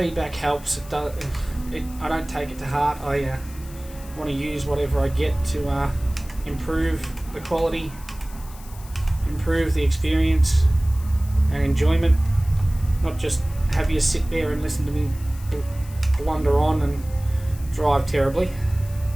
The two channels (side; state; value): left; noise; hiss, 20 dB below the sound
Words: helps, I don't take it to heart. I want to use whatever I get to improve the quality, improve the experience and enjoyment. Not just have you sit there and listen to me blunder on and drive terribly.